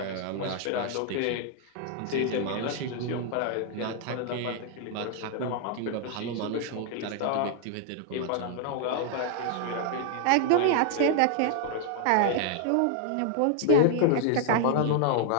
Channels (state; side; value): different; both; correlation -0.01